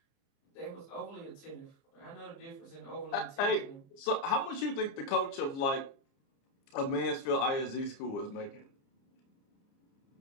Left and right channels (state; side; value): late; right; 30 ms